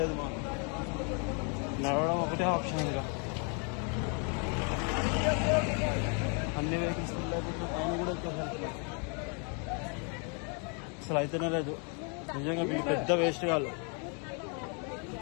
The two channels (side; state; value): right; quieter; 38.3 dB